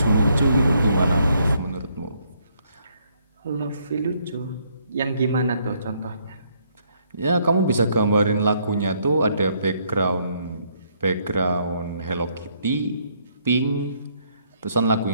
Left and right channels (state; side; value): inverted; both; correlation -0.70